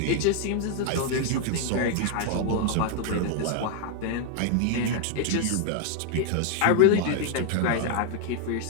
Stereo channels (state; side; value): different; both; correlation 0.00